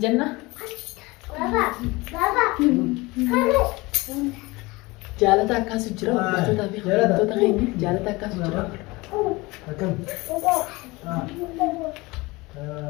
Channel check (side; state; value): right; quieter; 22.8 dB